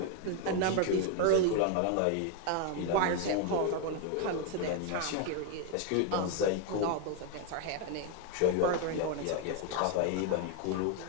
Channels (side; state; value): both; different; correlation 0.01